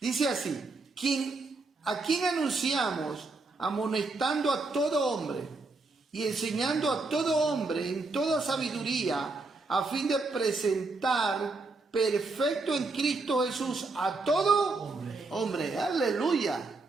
así, a quien anunciamos, amonestando a todo hombre y enseñando a todo hombre en toda sabiduría, a fin de presentar perfecto en Cristo Jesús a todo hombre. Aleluya.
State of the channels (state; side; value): quieter; left; 3.6 dB